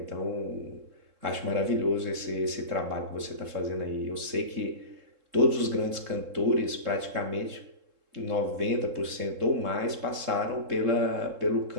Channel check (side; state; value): left; late; 3.7 ms